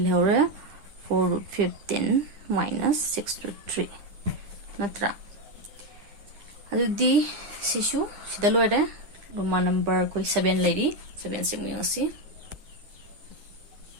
hore 4 root 15 minus 6 root 3 natra adudi sisu sida loire Roman number koi 7 lady 7 se muyong si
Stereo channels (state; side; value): late; left; 9.9 ms